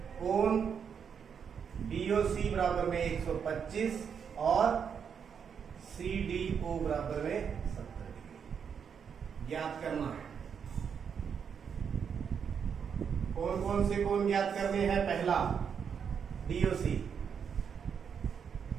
कोण BOC बराबर में 125 और CDO बराबर में 70 डिग्री ज्ञात करना है। कौन कौन से कोण ज्ञात करने हैं? पहला DOC,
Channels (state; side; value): quieter; left; 7.1 dB